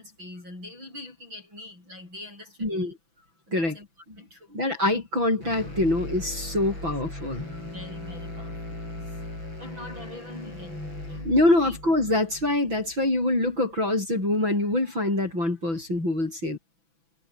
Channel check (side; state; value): left; late; 6.0 ms